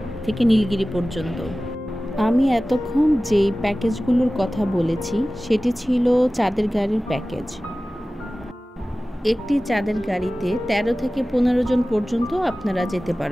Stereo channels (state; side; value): normal; both; correlation 0.96